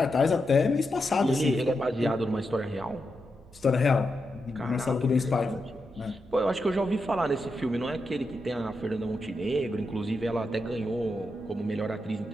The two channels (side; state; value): both; normal; correlation 0.86